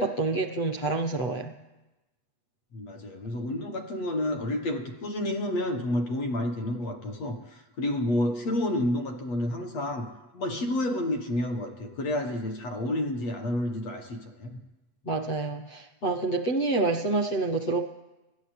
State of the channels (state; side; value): late; right; 8.2 ms